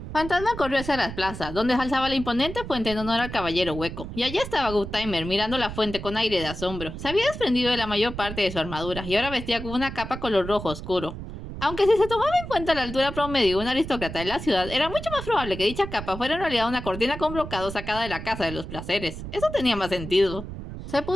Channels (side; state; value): right; noise; rumble, 9 dB below the sound